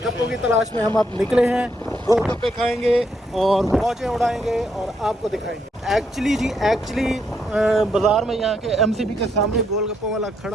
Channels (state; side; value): normal; both; correlation 0.75